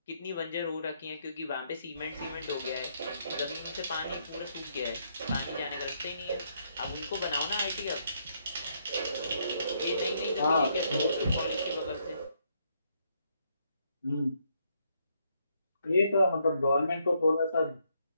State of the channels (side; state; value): both; inverted; correlation -0.74